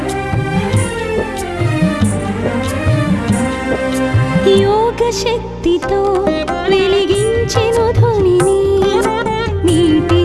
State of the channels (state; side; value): identical; both; correlation 1.00